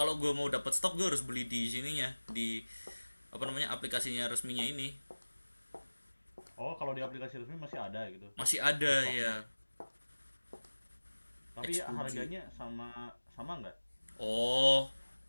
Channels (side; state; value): both; inverted; correlation -1.00